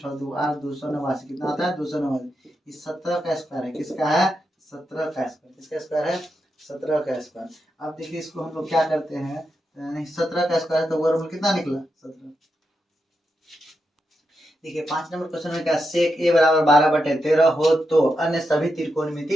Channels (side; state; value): both; normal; correlation 0.86